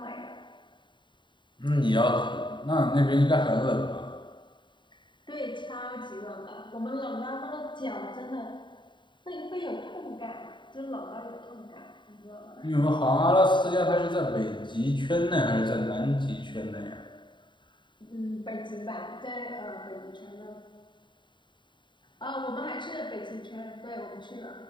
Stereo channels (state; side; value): late; right; 0.23 ms